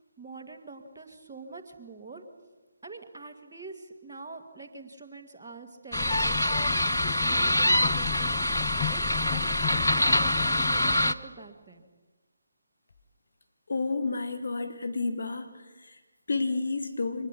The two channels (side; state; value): both; inverted; correlation -0.84